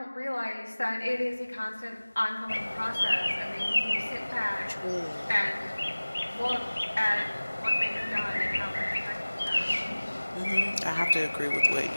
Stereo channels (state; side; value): inverted; both; correlation -1.00